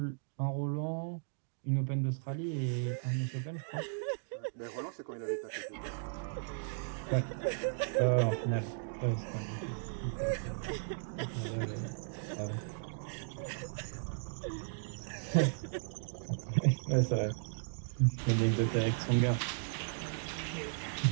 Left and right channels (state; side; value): silent; left; digital silence